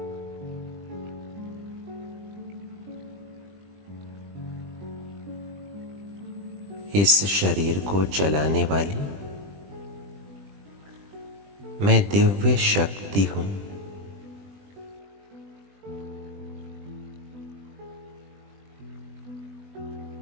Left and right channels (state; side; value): late; left; 20 ms